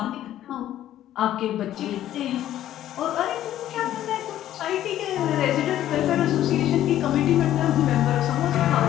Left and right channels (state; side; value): quieter; right; 12.4 dB